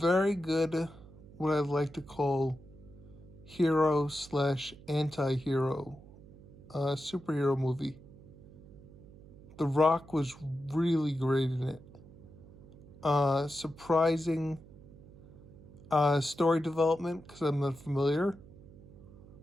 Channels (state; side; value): noise; right; hum, 20 dB below the sound